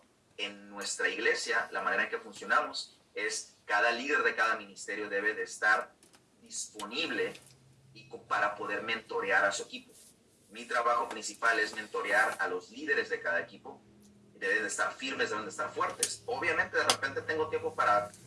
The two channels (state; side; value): identical; both; correlation 1.00